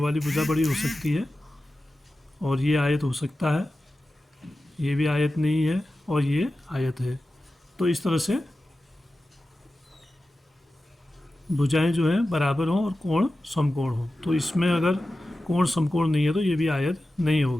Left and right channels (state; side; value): normal; both; correlation 0.94